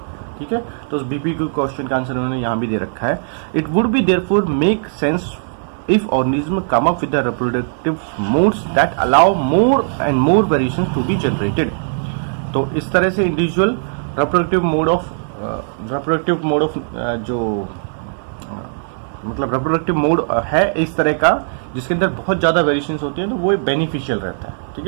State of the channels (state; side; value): silent; left; 64 dB below the other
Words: ठीक है, तो उस BPQ क्वेश्चन का आंसर उन्होंने यहाँ भी दे रखा है. It would be therefore make sense if organism come up with the reproductive modes that allow more and more variations to be generated. तो इस तरह से individual reproductive mode of जो मतलब reproductive mode है इस तरह का जिसके अंदर बहुत ज़्यादा वेरिएशंस होती हैं, तो वो बेनिफिशियल रहता है. ठीक